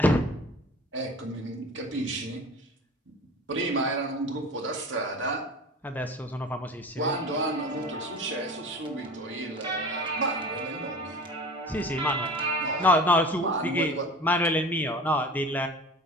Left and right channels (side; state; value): both; normal; correlation 0.38